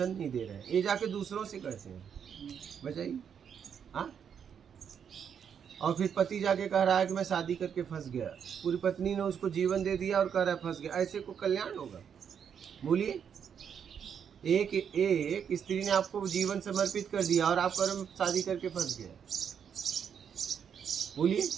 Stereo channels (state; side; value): quieter; left; 7.7 dB